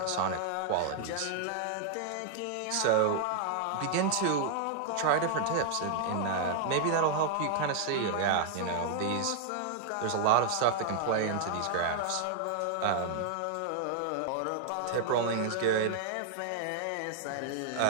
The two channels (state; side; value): different; both; correlation -0.01